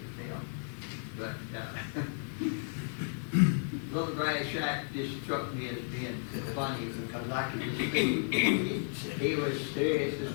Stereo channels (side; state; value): right; silent; digital silence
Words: tell. But Little Grass Shack just struck me as being funny, because I could just see he was serious